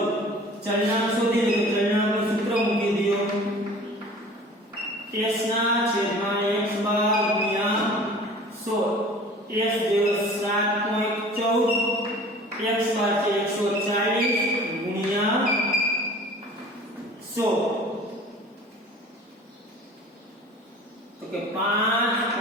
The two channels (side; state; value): both; normal; correlation 0.45